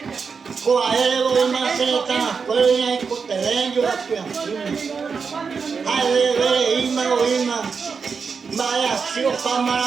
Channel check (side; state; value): left; quieter; 5.5 dB